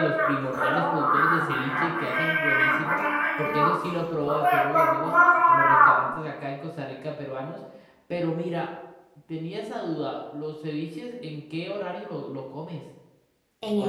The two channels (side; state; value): both; identical; correlation 1.00